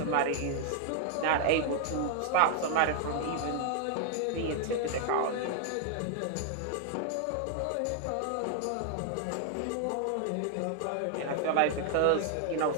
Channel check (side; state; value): both; different; correlation -0.01